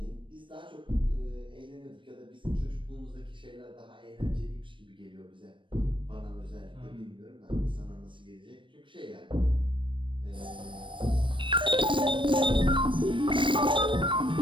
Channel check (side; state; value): left; late; 0.24 ms